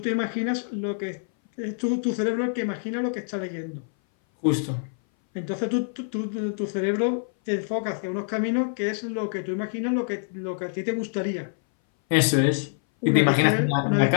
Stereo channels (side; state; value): right; silent; 59 dB below the other